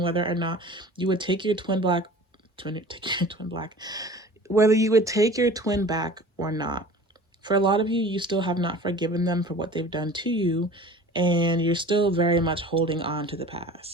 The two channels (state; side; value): normal; both; correlation 0.42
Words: whether or not you would take your whether you would take your twin back or not. For a lot of you, you still have not forgiven them for what they've done to you, and you're still very much holding on to the